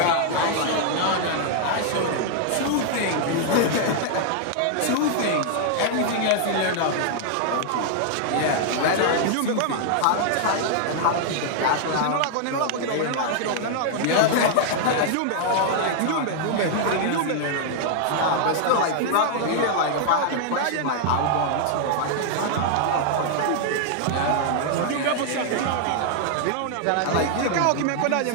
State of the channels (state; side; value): different; both; correlation 0.00